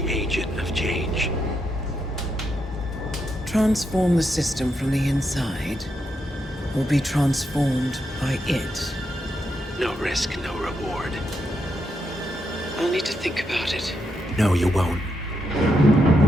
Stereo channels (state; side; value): normal; both; correlation 0.82